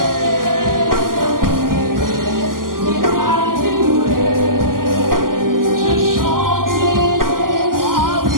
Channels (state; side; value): late; left; 0.91 ms